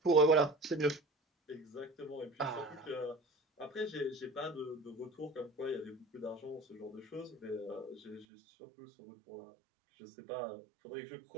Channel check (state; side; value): drops out; left; at 8.2 s